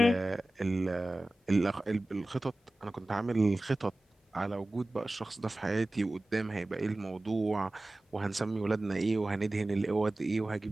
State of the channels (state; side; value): normal; both; correlation 0.97